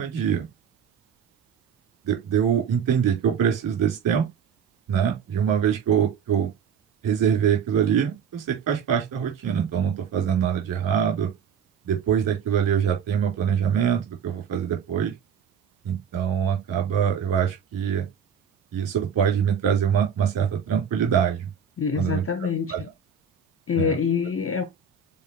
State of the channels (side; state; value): left; quieter; 6.5 dB